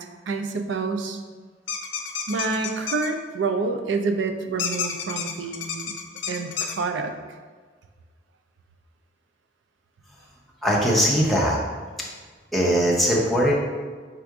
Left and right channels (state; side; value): normal; both; correlation 0.46